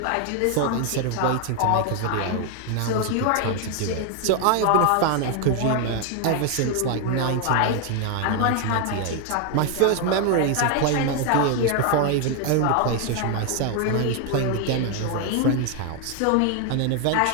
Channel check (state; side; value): different; both; correlation 0.00